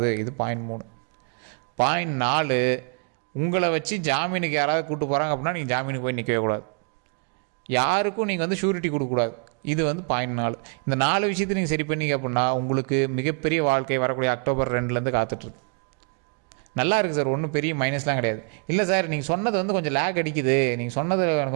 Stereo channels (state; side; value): quieter; left; 36.7 dB